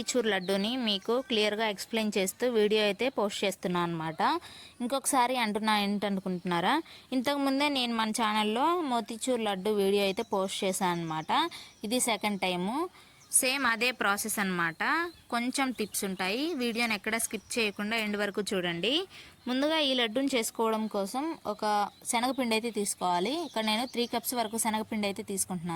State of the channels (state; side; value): identical; both; correlation 1.00